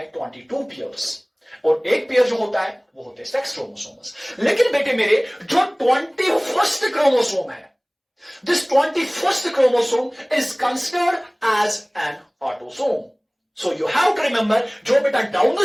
22 पेयर्स, और एक पेयर जो होता है वो होते हैं सेक्स क्रोमोसोम्स। लेकिन बेटे मेरे जो 21st क्रोमोसोम है, this 21st chromosome is considered as an autosome. So you have to remember जो बेटा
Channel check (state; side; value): identical; both; correlation 1.00